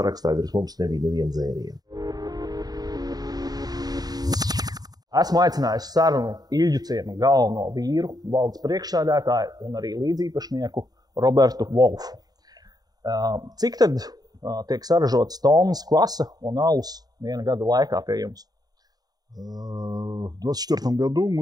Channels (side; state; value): left; late; 0.19 ms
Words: virs mums nebija neviena dzēriena. Esmu aicinājis sarunu Ilģuciema galveno vīru, valdes priekšsēdētāju un arī līdzīpašnieku Robertu Wolfu. Cik tad tiek saražotas tonnas kvasa un alus viena gada laikā pie jums? В 2024 году